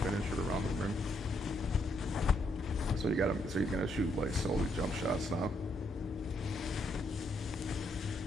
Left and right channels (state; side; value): normal; both; correlation 0.75